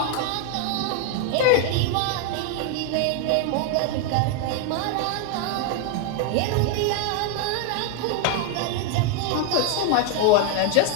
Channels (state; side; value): different; both; correlation 0.00